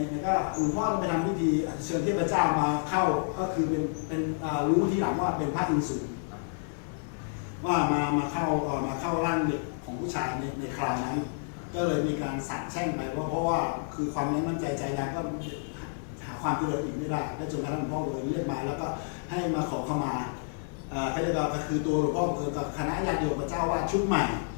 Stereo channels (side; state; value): right; silent; 58 dB below the other